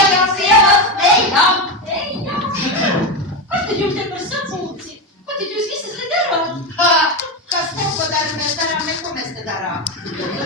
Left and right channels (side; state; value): both; normal; correlation 0.14